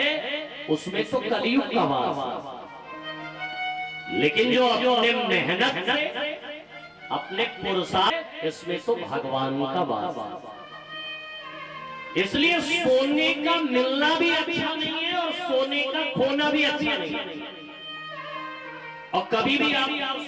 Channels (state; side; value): identical; both; correlation 1.00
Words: उसमें तो कलियुग का वास, लेकिन जो अपने मेहनत से, अपने पुरुषार्थ, इसमें तो भगवान का वास। इसलिए सोने का मिलना भी अच्छा नहीं है और सोने का खोना भी अच्छा नहीं है। और कभी भी आप